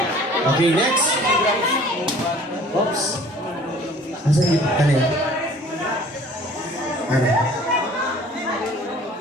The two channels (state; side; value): normal; both; correlation 0.50